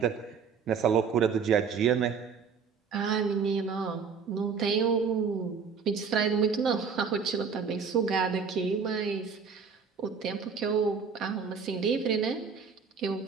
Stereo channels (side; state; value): left; quieter; 5.9 dB